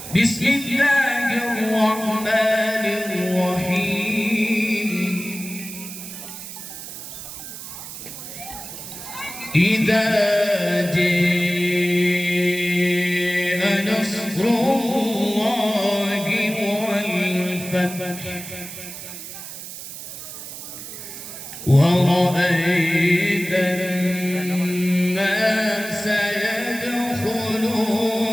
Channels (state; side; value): noise; right; hiss, 11 dB below the sound